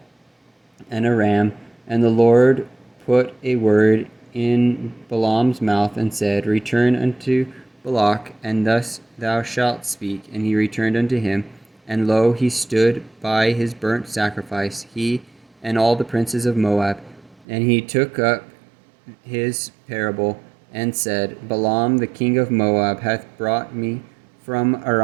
and a ram. And the Lord put a word in Balaam's mouth, and said, Return unto Balak, and thus thou shalt speak. And he returned unto him, and lo, he stood by his burnt sacrifice, he and all the princes of Moab. And he took up his parable, and said, Balaam the king of Moab hath brought me from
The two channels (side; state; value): left; drops out; at 17.4 s